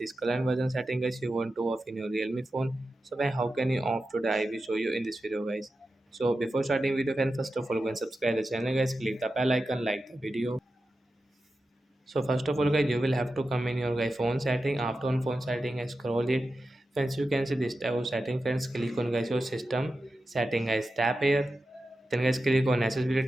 color inversion setting guys you want to off in your Realme phone. So guys how can you off today? I will show you in this video guys. So before starting video friend first of all go and subscribe the channel guys. Click the bell icon, like the video. So first of all guys you will have to come in your guys phone setting. After on phone setting I scroll it. Friends you can see this type of setting. Friends click on guys your system setting guys. Tap here. Then guys click on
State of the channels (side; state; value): both; normal; correlation 0.91